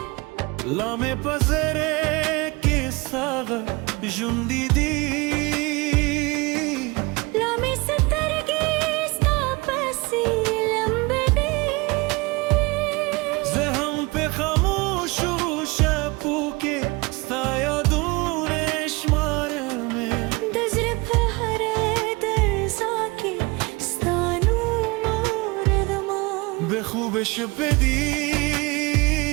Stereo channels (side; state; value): left; quieter; 25.2 dB